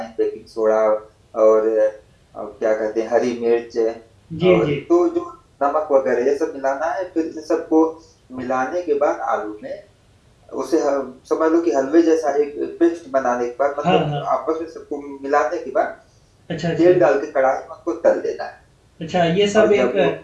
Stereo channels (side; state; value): both; identical; correlation 1.00